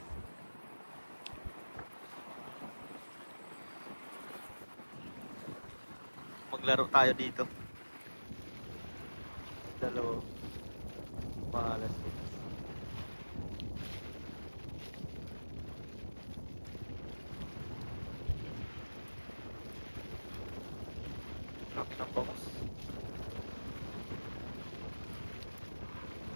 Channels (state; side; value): inverted; both; correlation -1.00